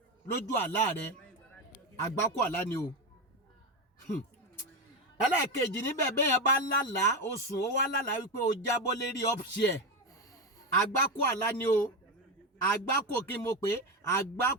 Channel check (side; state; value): both; normal; correlation 0.14